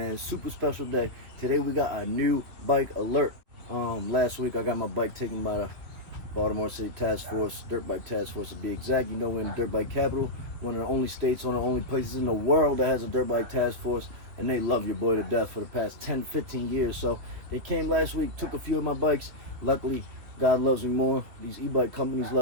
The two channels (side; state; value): left; late; 3.1 ms